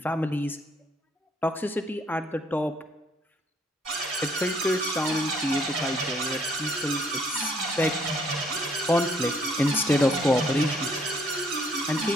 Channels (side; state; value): both; normal; correlation 0.66